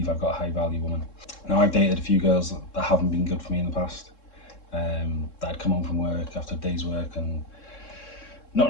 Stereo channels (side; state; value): right; late; 3.7 ms